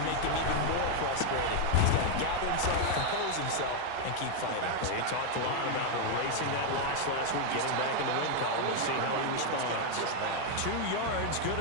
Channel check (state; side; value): different; both; correlation 0.01